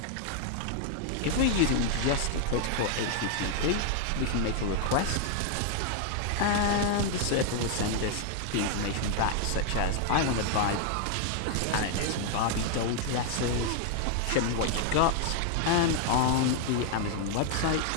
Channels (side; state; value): both; different; correlation 0.00